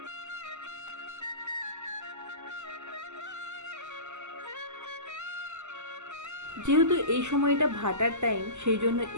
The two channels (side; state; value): left; late; 0.83 ms